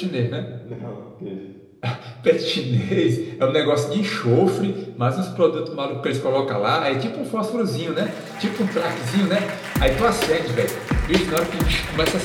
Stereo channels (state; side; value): identical; both; correlation 1.00